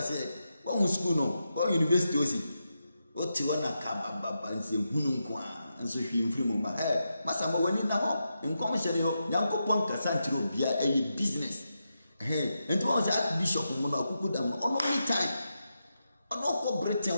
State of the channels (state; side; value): inverted; both; correlation -0.87